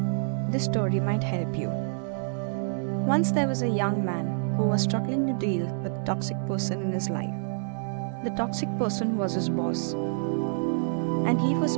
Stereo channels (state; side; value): silent; left; digital silence